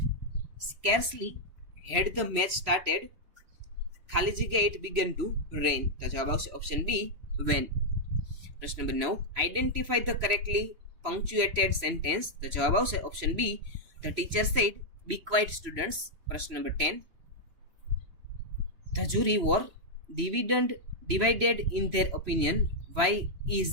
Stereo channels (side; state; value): left; late; 3.0 ms